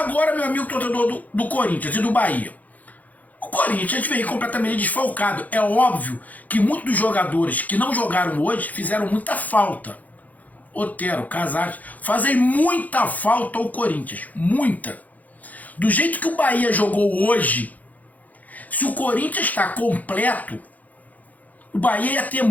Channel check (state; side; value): late; right; 0.079 ms